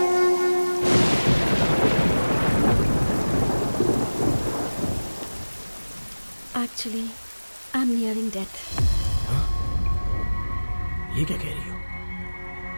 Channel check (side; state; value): both; inverted; correlation -1.00